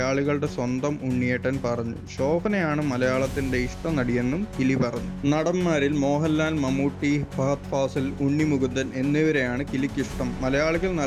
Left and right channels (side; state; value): both; identical; correlation 1.00